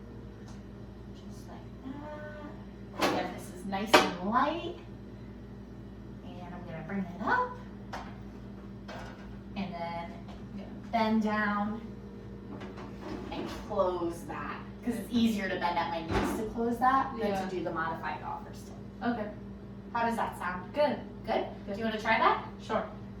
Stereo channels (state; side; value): identical; both; correlation 1.00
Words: Just like that. Again, this is nice and light. And I'm going to bring it up. And then I'm going to bend down and close that. Because it's easier to bend at my knees to close that than to do the modified golfer's tilt. Okay. How does that sound? Good. Good? Do you want to try that? Sure.